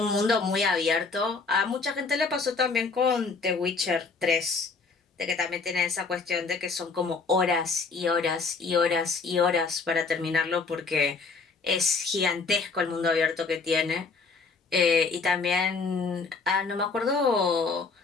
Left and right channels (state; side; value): quieter; right; 4.5 dB